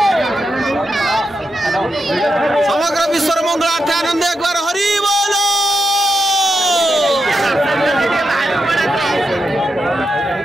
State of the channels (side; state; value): both; normal; correlation 0.86